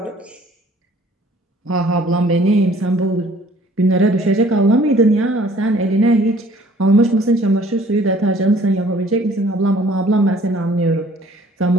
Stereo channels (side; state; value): both; normal; correlation 0.56